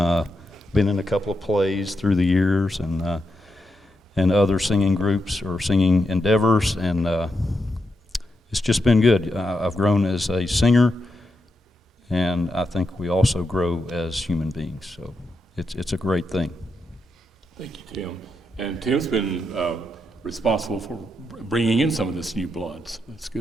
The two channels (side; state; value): both; normal; correlation 0.84